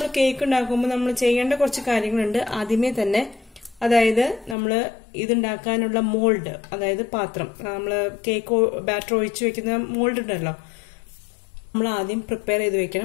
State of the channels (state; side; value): drops out; right; at 4.5 s